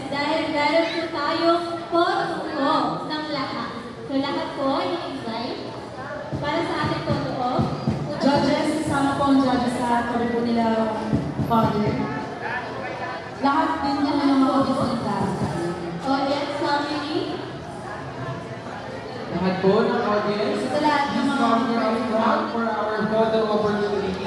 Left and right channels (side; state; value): both; identical; correlation 1.00